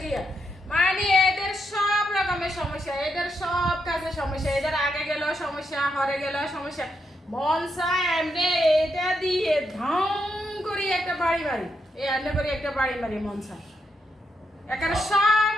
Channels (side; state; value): both; normal; correlation 0.81